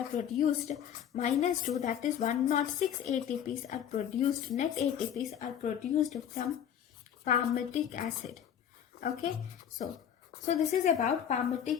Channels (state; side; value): quieter; right; 9.3 dB